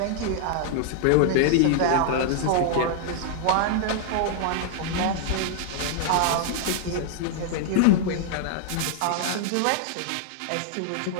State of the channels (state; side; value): different; both; correlation -0.01